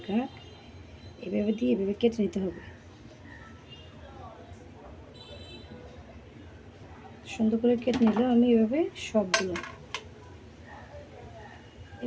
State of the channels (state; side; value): identical; both; correlation 1.00